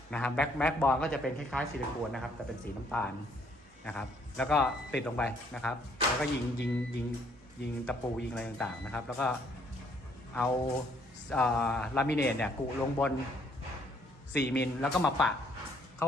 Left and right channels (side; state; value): both; normal; correlation 0.66